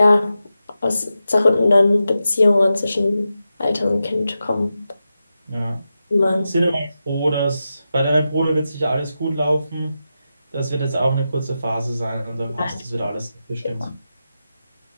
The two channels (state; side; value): inverted; both; correlation -0.90